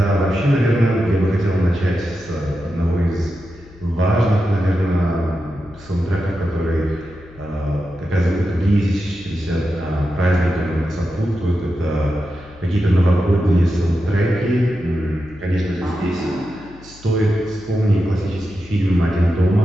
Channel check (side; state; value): left; noise; hum, 22 dB below the sound